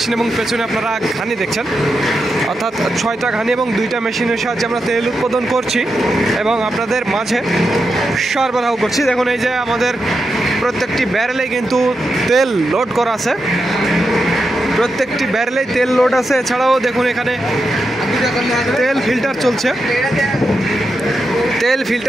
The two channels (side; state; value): both; normal; correlation 0.87